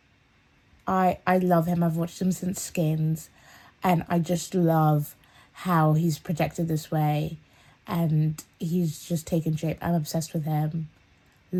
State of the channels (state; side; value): identical; both; correlation 1.00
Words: I love him. I've watched him since Skins, and I just love how he's projected this way, and he's just taken shape. I'm obsessed with him.